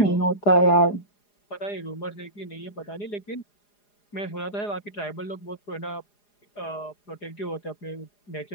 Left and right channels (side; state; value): right; late; 4.9 ms